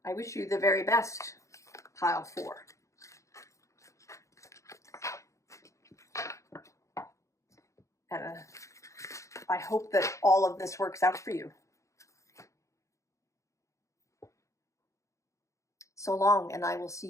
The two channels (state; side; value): late; right; 0.15 ms